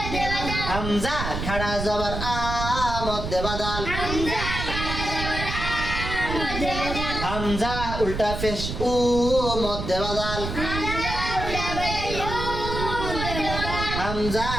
হামজা খাড়া জবর আ মধ্যে বদল, হামজা উল্টা পেশ উ মধ্যে বদল, হামজা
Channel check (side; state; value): right; noise; rumble, 5 dB below the sound